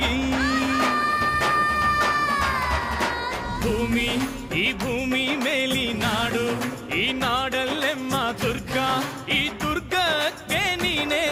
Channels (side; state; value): both; identical; correlation 1.00